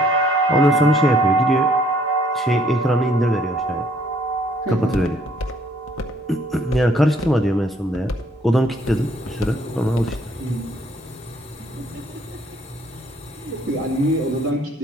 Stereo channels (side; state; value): both; normal; correlation 0.63